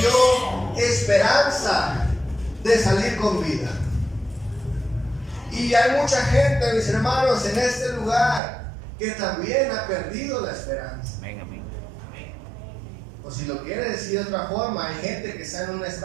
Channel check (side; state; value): left; drops out; at 8.4 s